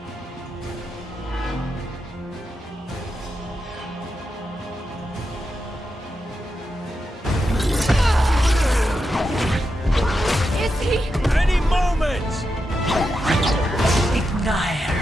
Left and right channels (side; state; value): both; normal; correlation 0.87